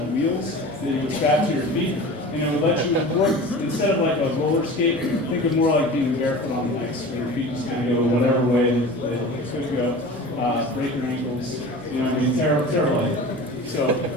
wheels that you would strap to your feet, and it would let you work, instead of like a roller skate, think of more like being barefoot on the ice, where your feet just kind of go whatever way that it could go, break your ankles, terrible idea. So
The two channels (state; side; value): normal; both; correlation 0.37